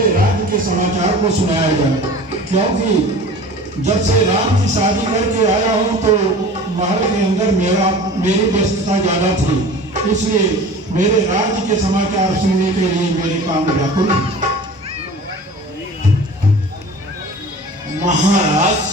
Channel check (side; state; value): both; normal; correlation 0.40